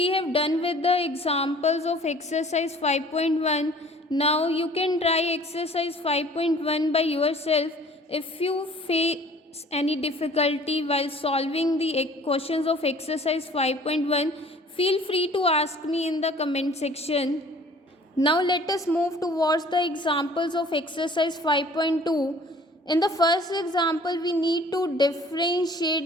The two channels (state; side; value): normal; both; correlation 0.51